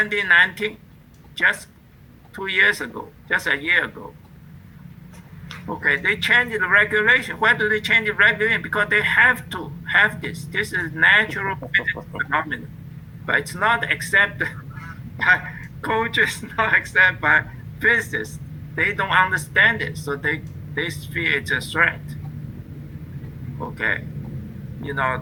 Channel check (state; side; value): identical; both; correlation 1.00